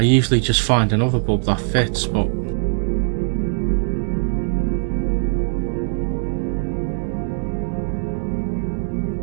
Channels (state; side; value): silent; left; 65 dB below the other